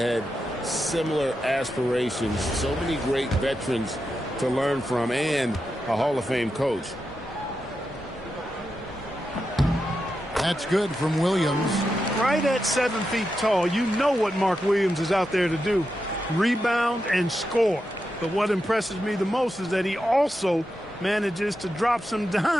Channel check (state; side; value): normal; both; correlation 0.88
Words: similar aspirations. So many great veterans to learn from, and a Hall of Fame coach. That's good from Williams. Right at 7 feet tall, you know what Mark Williams is out there to do. Rebound and score. But what impresses me the most is that he also manages to drop some